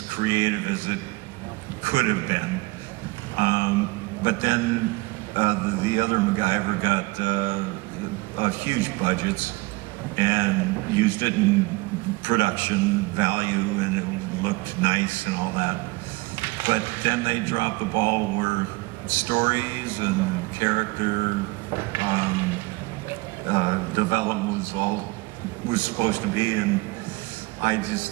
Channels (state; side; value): quieter; left; 23.7 dB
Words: creative as it could have been. But then the other MacGyver got huge budgets and used it in production value, and it looked nice and all that. But then they dropped the ball where stories and character development was supposed to be, and I just